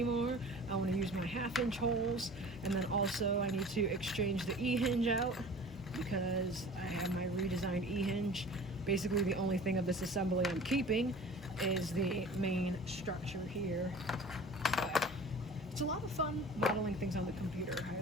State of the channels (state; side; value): normal; both; correlation 0.42